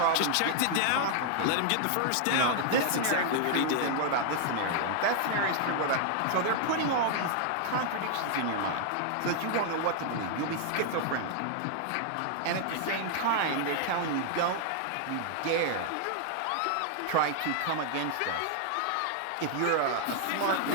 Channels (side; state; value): both; different; correlation 0.00